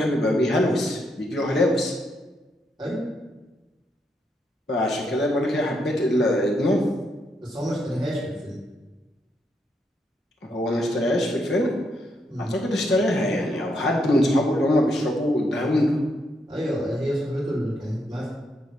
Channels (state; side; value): normal; both; correlation 0.78